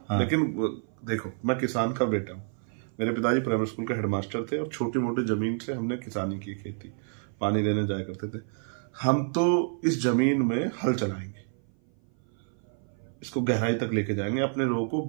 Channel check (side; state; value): left; silent; 57 dB below the other